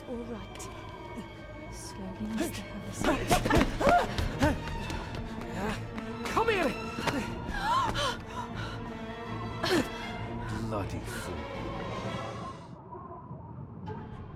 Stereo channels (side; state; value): both; identical; correlation 1.00